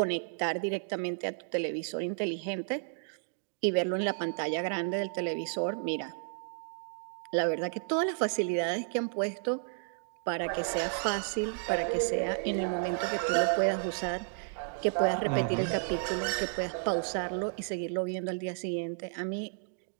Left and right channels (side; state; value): left; silent; digital silence